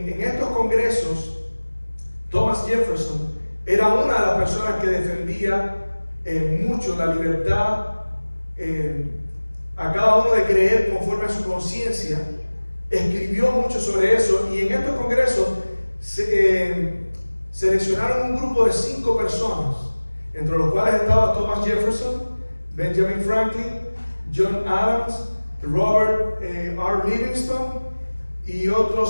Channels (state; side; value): inverted; both; correlation -1.00